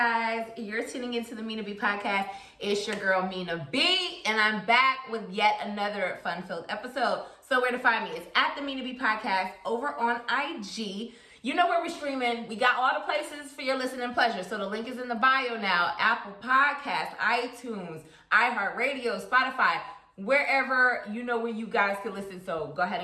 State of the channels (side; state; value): both; identical; correlation 1.00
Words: you're tuning into the Mina B Podcast. It's your girl Mina B, and I'm back with yet another fun-filled episode. So where to find me? It's at the Mina B Podcast over on IG. You know where we're streaming. We got all the places for your listening pleasure. So the link is in the bio now. Apple Podcasts, iTunes, iHeartRadio, Spotify, wherever you know where you guys can listen. So go ahead